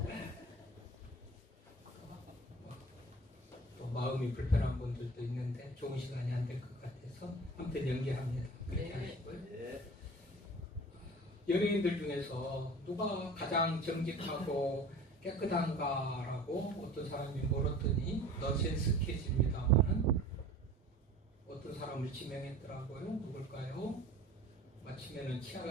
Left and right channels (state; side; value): normal; both; correlation 0.42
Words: 또 마음이 불편한 분들도 있는데 좋은 시간이 안 될 것 같아서 아무튼 연기합니다. 그렇게 네. 하시고요. 연예인들 중에서 누가 가장 정직하고 깨끗한가라고 어떤 사람이 물었더니 넌센스 퀴즈입니다만은 어떤 사람을 지명했더라고요. 누굴까요? 마치면은 치약